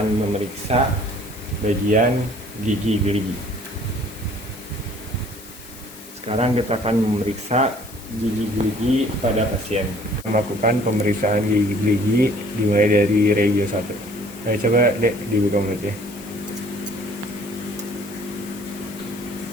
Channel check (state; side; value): noise; left; hiss, 19 dB below the sound